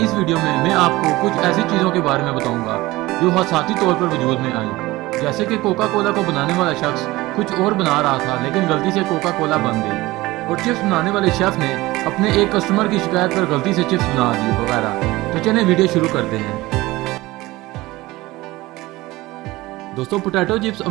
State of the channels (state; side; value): quieter; left; 19.4 dB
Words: इस वीडियो में मैं आपको कुछ ऐसी चीज़ों के बारे में बताऊंगा जो हादसाती तौर पर वजूद में आई। जैसे कि कोका कोला को बनाने वाला शख्स कुछ और बना रहा था लेकिन गलती से कोका कोला बन गई, और चिप्स बनाने वाले शेफ ने अपने एक कस्टमर की शिकायत पर गलती से चिप्स बना दी वगैरह। तो चलिए वीडियो शुरू करते हैं। दोस्तों पोटैटो चिप्स